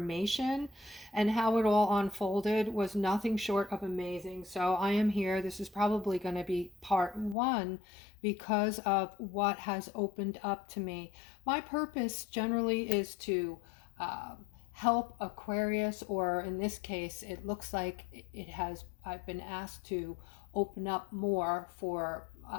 and how it all unfolded was nothing short of amazing. So I am here. This is probably going to be part one because of what has opened up to me. My purpose generally is to help Aquarius, or in this case, it looks like I've been asked to open up more for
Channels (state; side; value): drops out; right; at 7.4 s